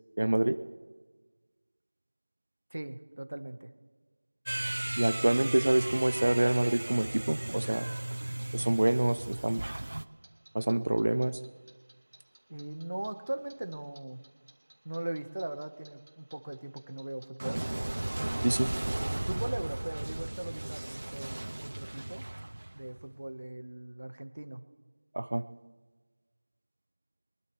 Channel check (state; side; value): inverted; both; correlation -1.00